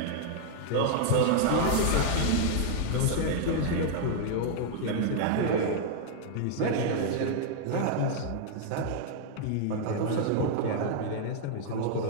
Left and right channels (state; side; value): different; both; correlation -0.01